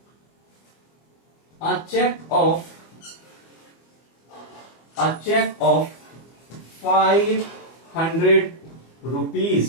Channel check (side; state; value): right; late; 24 ms